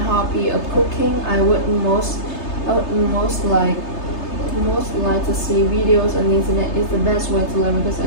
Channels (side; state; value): right; late; 3.3 ms